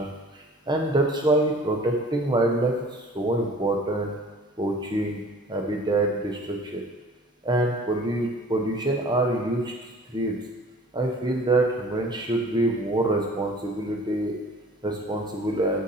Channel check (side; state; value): both; normal; correlation 0.48